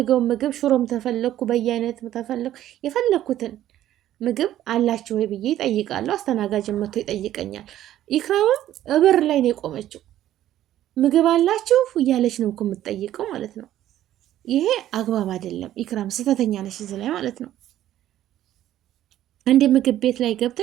ምግብ ሽሮም ተፈለኩ በየአይነት ተፈለኩ የፈለኩትን ምግብ አላችሁ ወይ ብዬ ይጠይቃለሁ። አስተናጋጅን መጥቶ ይጠይቀኛል። ኢክራምም እበር ላይ ነው የቆመችው። ምግብ አላችሁ እያለች ነው እኮ የምትጠይቀው ማለት ነው። ይሄ አግባብ አይደለም። ኢክራም ስህተተኛ ነሽ እዚህ ላይ ማለት ነው። አንድ ምግብ ቤት ላይ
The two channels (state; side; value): quieter; left; 12.7 dB